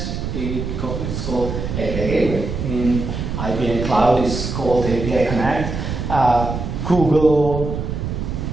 it's called API Gateway. In IBM Cloud, it's called API Connect. Google,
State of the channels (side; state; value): right; noise; rumble, 4 dB below the sound